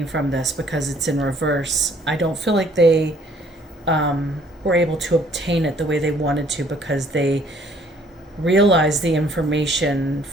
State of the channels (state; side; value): normal; both; correlation 0.60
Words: from this because it's in reverse. I don't feel like they were able to obtain it the way they wanted to because they realized the information